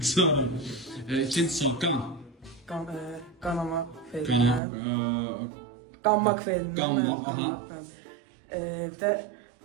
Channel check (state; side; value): drops out; left; at 4.6 s